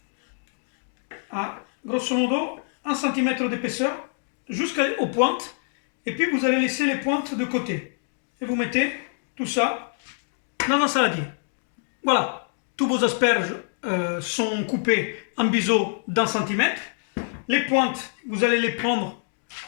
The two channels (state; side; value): silent; right; 58 dB below the other